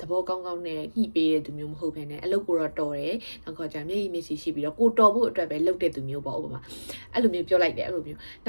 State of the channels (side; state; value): both; inverted; correlation -1.00